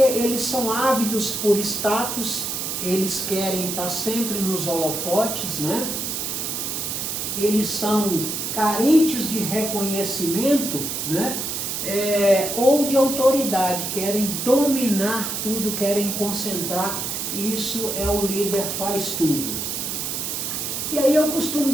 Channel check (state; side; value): noise; right; hiss, 3 dB below the sound